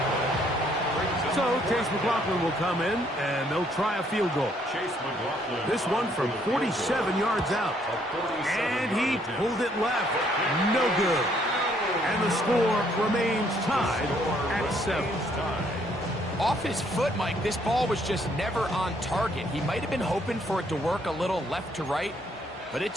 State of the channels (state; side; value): normal; both; correlation 0.67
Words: So Chase McLaughlin will come in, and they'll try a field goal. This one from 47 yards out. And he pulled it left. No good. And the score remains tied at 7. Off his foot, Mike, this ball was just never on target. He might have been hoping for it to work a little left to right, but it